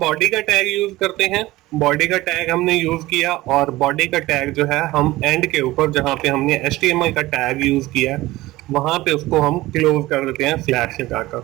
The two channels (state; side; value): quieter; left; 18.3 dB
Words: का टैग यूज करते हैं। बॉडी का टैग हमने यूज किया, और बॉडी का टैग जो है हम एंड के ऊपर जहां पे हमने HTML का टैग यूज किया वहां पे उसको हम क्लोज कर देते हैं स्लैश लगाकर।